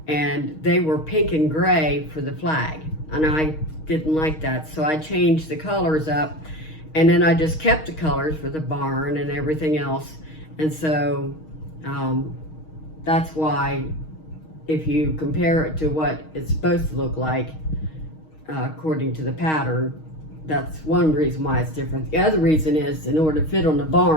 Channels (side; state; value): right; late; 6.4 ms